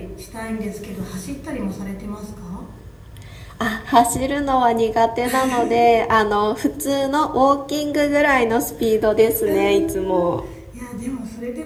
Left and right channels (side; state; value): both; identical; correlation 1.00